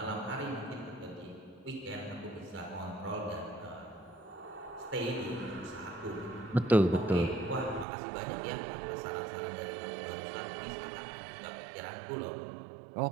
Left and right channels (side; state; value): left; drops out; at 7.9 s